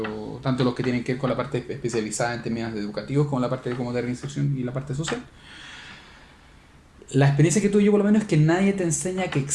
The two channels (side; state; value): both; identical; correlation 1.00